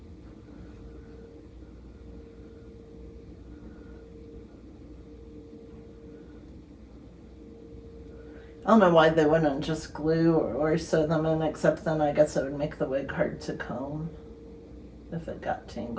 I don't know why they wouldn't just glue or sew them in, except then I guess it would make the wig hard to comb if it got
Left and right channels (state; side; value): identical; both; correlation 1.00